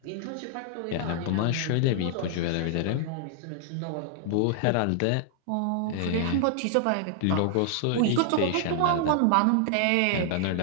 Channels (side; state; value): both; different; correlation 0.00